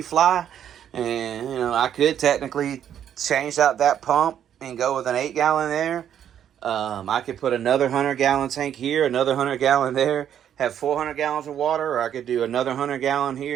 fly, and I could technically change out that pump and go with an 8-gallon there. I could put another 100-gallon tank here, another 100-gallon there, have 400 gallons of water, or I could do another 100-gallon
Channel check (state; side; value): quieter; left; 9.6 dB